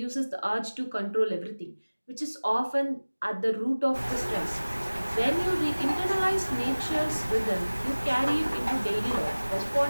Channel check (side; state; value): both; inverted; correlation -1.00